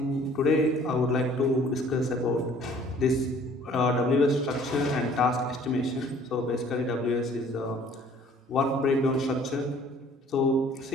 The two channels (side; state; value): both; normal; correlation 0.55